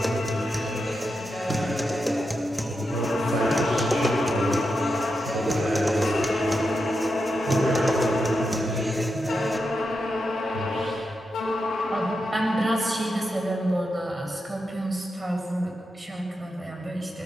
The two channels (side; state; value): both; normal; correlation 0.87